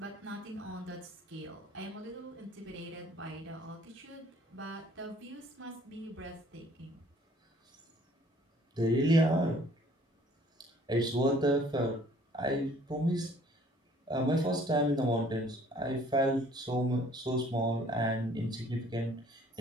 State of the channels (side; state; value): both; normal; correlation 0.57